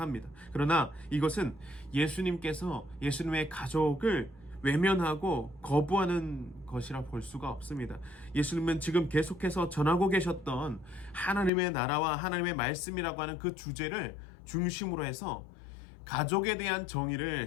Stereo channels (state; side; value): drops out; right; at 11.5 s